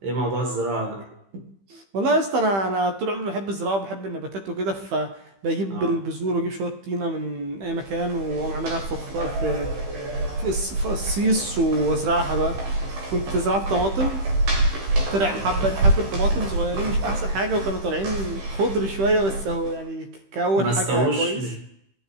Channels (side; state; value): left; late; 15 ms